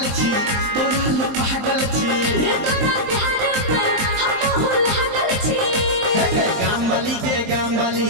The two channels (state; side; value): late; left; 23 ms